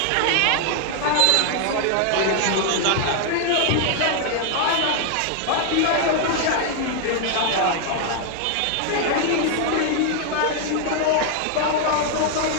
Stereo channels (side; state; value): both; different; correlation 0.00